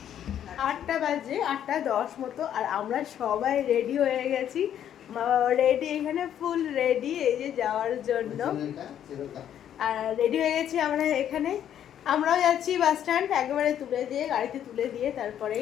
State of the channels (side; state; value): right; quieter; 10.1 dB